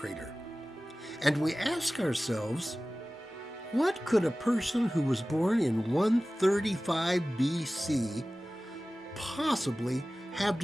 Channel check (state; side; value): normal; both; correlation 0.97